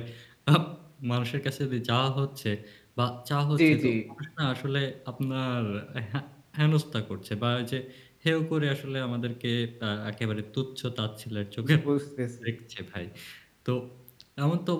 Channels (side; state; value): both; identical; correlation 1.00